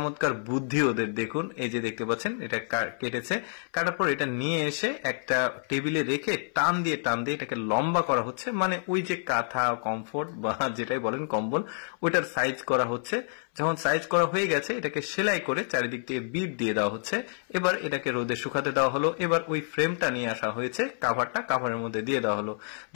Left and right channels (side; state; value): right; silent; 59 dB below the other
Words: বুদ্ধি ওদের। দেখুন এই যে দেখতে পাচ্ছেন এটা কেটেছে। কাটার পর এটা নিয়ে এসে একটা টেবিলে রেখে টান দিয়ে এটাকে লম্বা করা হচ্ছে। মানে ওই যে কাঁথা, কমফোর্ট বা যেটাই বলেন কম্বল, ওইটার সাইজ করা হচ্ছে। যখন সাইজ করা হয়ে গেছে এটাকে সেলাই করে চারিদিক থেকে বিট দিয়ে দেওয়া হচ্ছে। এবার এটাকে রোদে শুকাতে দেওয়া হলো। এবার ওই ফ্রেমটা নিয়ে আসা হয়েছে, কাভারের মধ্যে দিয়ে দেওয়া হলো।